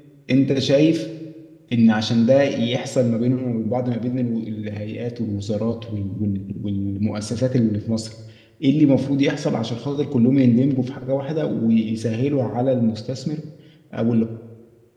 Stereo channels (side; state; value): both; identical; correlation 1.00